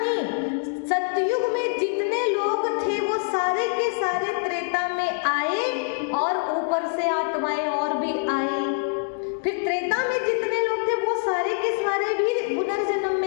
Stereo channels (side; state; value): right; silent; digital silence